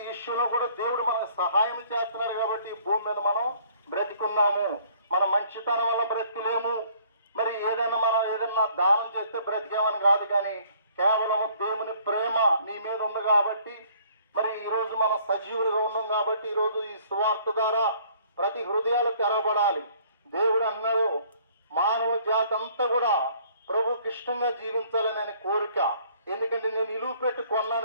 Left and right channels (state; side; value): inverted; both; correlation -0.59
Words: ఇష్యూలో కూడా దేవుడు మనకు సహాయం చేస్తున్నారు కాబట్టి ఈ భూమి మీద మనం బ్రతికున్నాము. మన మంచితనం వల్ల బ్రతికలేము, మరి ఏదన్నా దానం చేస్తే బ్రతికేమని కాదు, కానీ కేవలం దేవుని ప్రేమ నీ మీద ఉంది కాబట్టి మరి ఈరోజు మనం సజీవులుగా ఉన్నాం కాబట్టి ఈరోజు ఈ సువార్త ద్వారా ప్రతి హృదయాలు తెరబడాలి. దేవుడు అన్నారు, మానవ జాతి అంతా కూడా ప్రభుకి ఇష్టంగా జీవించాలని ఆయన కోరిక. ఎందుకంటే నేను ఇలువ పెట్టి